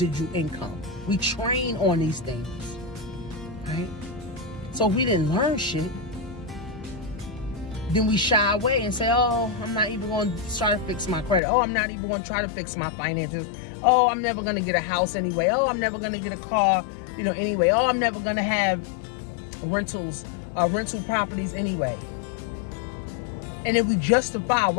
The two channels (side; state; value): right; drops out; at 11.4 s